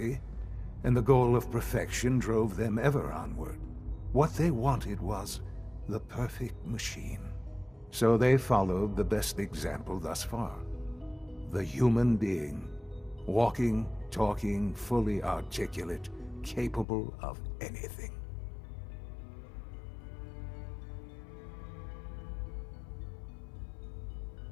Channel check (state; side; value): drops out; right; at 16.9 s